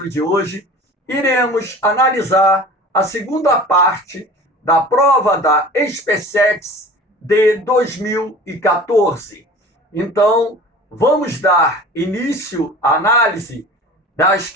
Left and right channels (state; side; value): normal; both; correlation 0.41